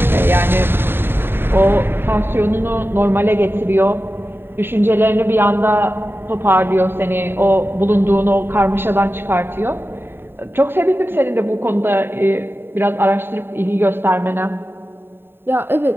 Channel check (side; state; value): left; late; 0.11 ms